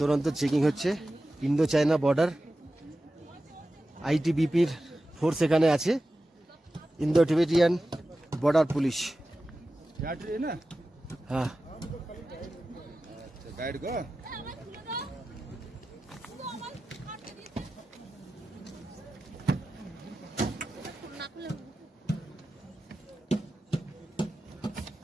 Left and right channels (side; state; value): both; normal; correlation 0.94